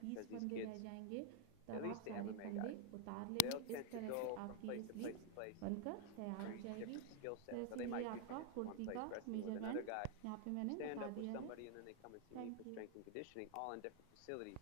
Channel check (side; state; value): both; different; correlation 0.00